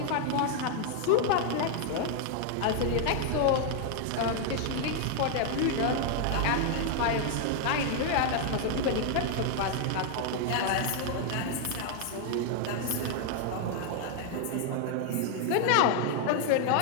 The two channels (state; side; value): different; both; correlation 0.00